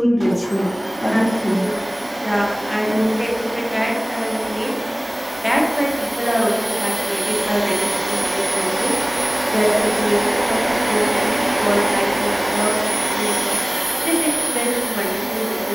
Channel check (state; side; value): normal; both; correlation 0.98